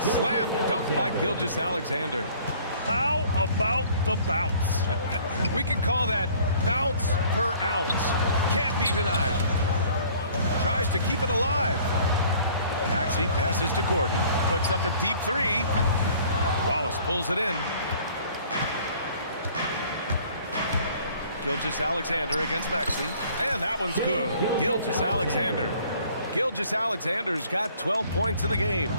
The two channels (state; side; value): inverted; both; correlation -0.54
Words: slam dunk by Gilgeous Alexander. How about the bounce? We can call that bounce per ounce. Can't be denied. Tries to keep it alive. Maxey passes to Gordon. Puts up a deep 3. Wallace pulls it in. Gilgeous Alexander against Maxey. And that one's good. Gilgeous Alexander. Gilgeous Alexander's got 12 points in the game.